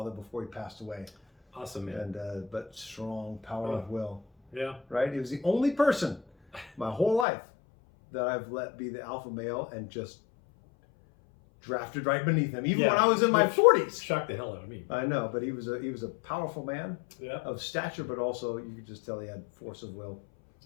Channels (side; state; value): right; drops out; at 7.2 s